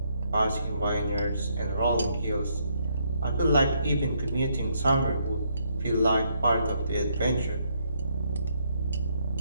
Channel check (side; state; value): both; inverted; correlation -0.73